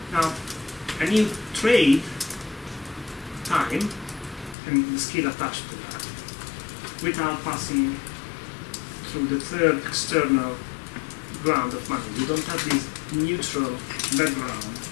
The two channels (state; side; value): drops out; right; at 4.5 s